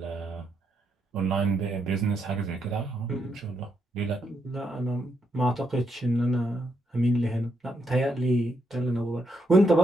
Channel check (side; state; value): both; normal; correlation 0.79